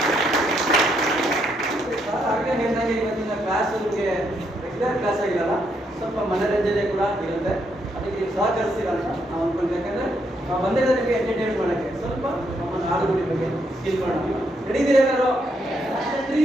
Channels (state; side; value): normal; both; correlation 0.76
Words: ಇವತ್ತಿನ ಕ್ಲಾಸ್ ರೆಗ್ಯುಲರ್ ಕ್ಲಾಸ್ ಆಗಿರಲ್ಲ, ಸ್ವಲ್ಪ ಮನರಂಜನೆ ಕೂಡ ಇರುತ್ತೆ. ಅದಕ್ಕೆ ಸಹಕರಿಸ್ತೀರ ಅಂತ ನಾವು ಅನ್ಕೊಂಡ್ವಿ. ಯಾಕಂದ್ರೆ ನಾವು ಬಂದಿರೋದಕ್ಕೆ ಎಂಟರ್ಟೈನ್ಮೆಂಟ್ ಮಾಡೋಕ್ಕೆ ಸ್ವಲ್ಪ ನಮ್ಮ ನಾಡುಗುಡಿ ಬಗ್ಗೆ ತಿಳ್ಕೊಳ್ಳೋಣ. ನಡೀತೀರಿ ಎಲ್ಲರೂ?